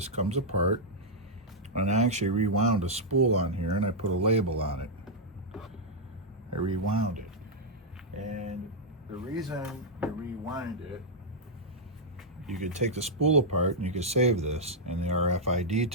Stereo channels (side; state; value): both; normal; correlation -0.05